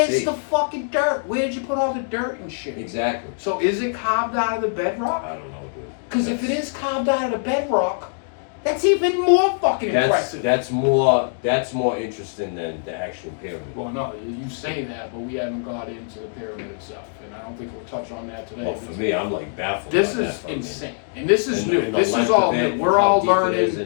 safe. the fucking dirt? Where'd you put all the dirt and shit? Exactly. So is it carved out of the bedrock? I don't know, dude. Because if it is carved out of the bedrock, that's even more fucking impressive. That's more interesting than the actual pyramid. Well, no, you say that, but we haven't got into the pyramid itself, and I don't think we'll touch on that today. Well, for me, I'm like baffled. This by that is fucking- insane, and this is and new. and the This is length all of new. it, We're how all deep it is,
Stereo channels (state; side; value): silent; right; digital silence